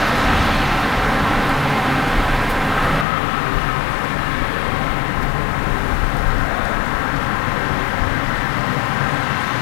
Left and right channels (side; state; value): right; drops out; at 3.1 s